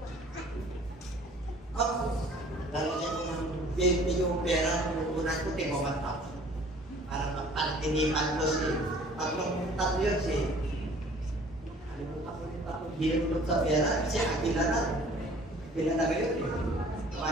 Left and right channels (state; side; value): normal; both; correlation 0.52